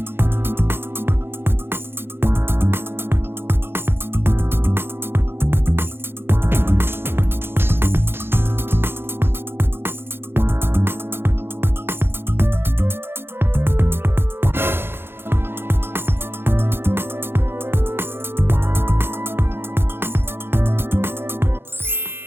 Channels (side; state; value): left; late; 0.11 ms